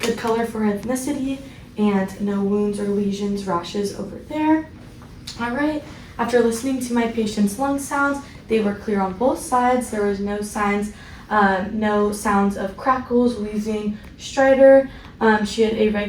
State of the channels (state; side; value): identical; both; correlation 1.00